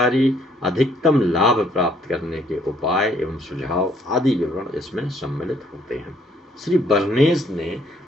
अधिकतम लाभ प्राप्त करने के उपाय एवं सुझाव आदि विवरण इसमें सम्मिलित होते हैं। श्री बर्नेस ने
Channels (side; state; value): both; normal; correlation 0.65